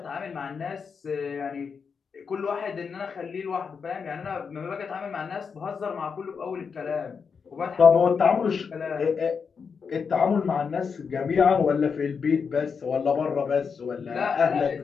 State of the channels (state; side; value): quieter; right; 5.9 dB